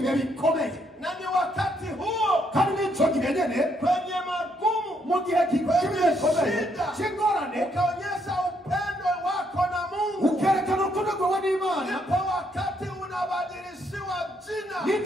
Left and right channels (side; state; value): both; normal; correlation 0.73